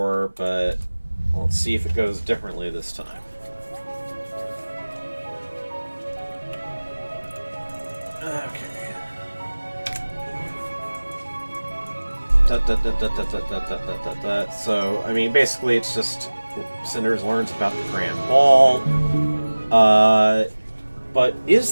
but let's see if it goes differently this time. Okay. So, I mean, basically it's just Cinders learns about the Grand Ball. But is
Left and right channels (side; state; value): both; inverted; correlation -1.00